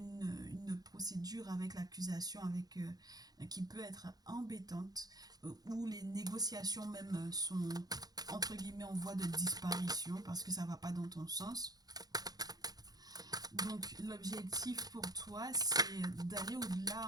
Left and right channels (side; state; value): left; late; 0.19 ms